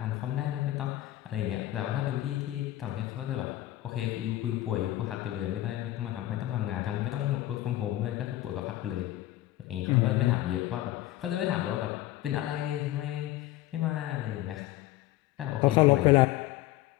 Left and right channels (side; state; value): right; quieter; 15.5 dB